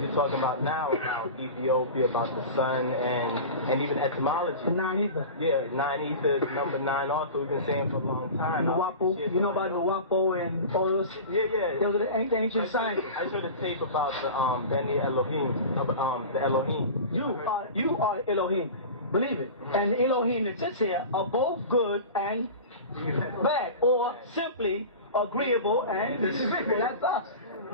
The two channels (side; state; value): both; inverted; correlation -0.33